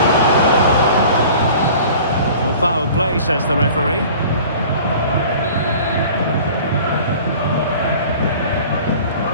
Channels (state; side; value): inverted; both; correlation -0.45